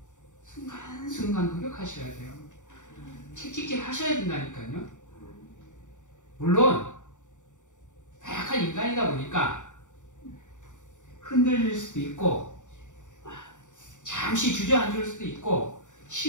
순간순간 노력하셔야 돼요. 책찍질 하셔야 된다니까요. 물론 다약한 인간이다 보니까 흔들릴 수도 있고 잠시 주저앉을 수도 있고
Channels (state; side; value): late; right; 0.86 ms